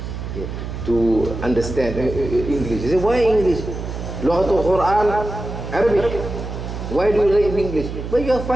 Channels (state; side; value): noise; right; hum, 7 dB below the sound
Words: yeah, to understand English. You say, why English? Lughatul Quran, Arabic. Why do you read English? But you are